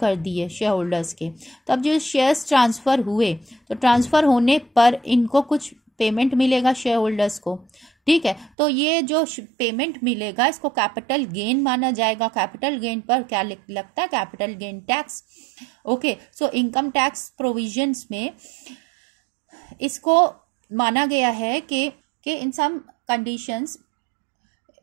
दिए शेयर होल्डर्स के। तो अब जो शेयर्स ट्रांसफ़र हुए तो ट्रांसफ़र होने पर इनको कुछ पेमेंट मिलेगा शेयर होल्डर्स को। ठीक है, तो ये जो पेमेंट मिलेगा इसको कैपिटल गेन माना जाएगा। कैपिटल गेन पर क्या लगता है, capital gain tax. Okay, so income tax provisions में इसको माना गया है कि इन सम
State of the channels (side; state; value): left; drops out; at 8.5 s